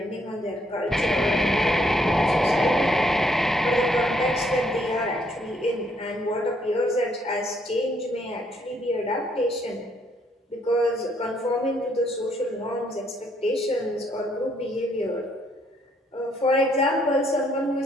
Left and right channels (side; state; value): both; normal; correlation 0.70